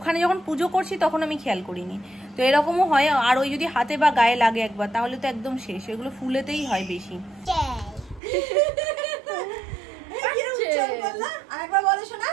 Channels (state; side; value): drops out; left; at 8.2 s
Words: যখন পুজো করছি তখন আমি খেয়াল করিনি। তো এরকমও হয়। আর ওই যদি হাতে বা গায়ে লাগে একবার, তাহলে তো একদম শেষ। এগুলো ফুলেতেই হয় বেশি।